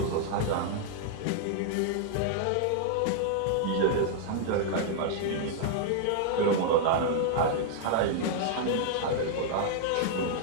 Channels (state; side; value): different; both; correlation -0.01